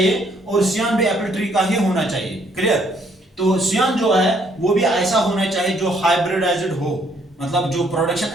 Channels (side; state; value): both; normal; correlation 0.67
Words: और सियान भी एप्पल ट्री का ही होना चाहिए। क्लियर? तो सियान जो है वो भी ऐसा होना चाहिए जो हाइब्रिडाइज्ड हो, मतलब जो प्रोडक्शन